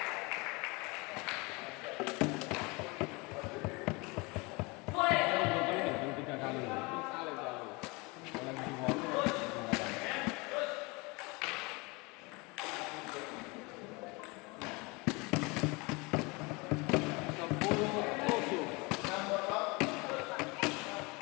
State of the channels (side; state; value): right; quieter; 26.8 dB